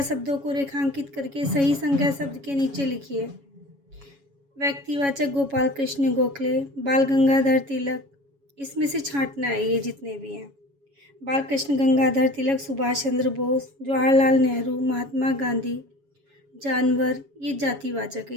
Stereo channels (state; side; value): late; left; 7.2 ms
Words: शब्दों को रेखांकित करके सही संज्ञा शब्द के नीचे लिखिए। व्यक्तिवाचक गोपाल कृष्ण गोखले, बाल गंगाधर तिलक, इसमें से छांटना है ये जितने भी हैं। बाल कृष्ण गंगाधर तिलक, सुभाष चंद्र बोस, जवाहरलाल नेहरू, महात्मा गांधी। जानवर, ये जातिवाचक है,